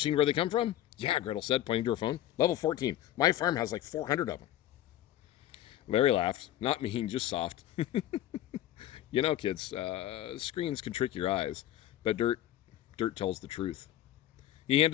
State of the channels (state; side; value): quieter; right; 13.0 dB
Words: where they come from? Yeah, Gretel said, pointing to her phone. Level 14. My farm has like 400 of them. Larry laughed. Not mean, just soft. You know, kids, screens can trick your eyes, but dirt tells the truth. He